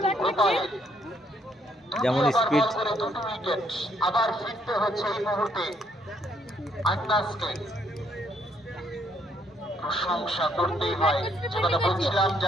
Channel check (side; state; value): both; normal; correlation 0.70